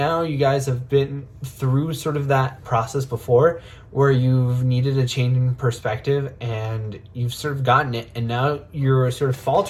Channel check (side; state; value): both; identical; correlation 1.00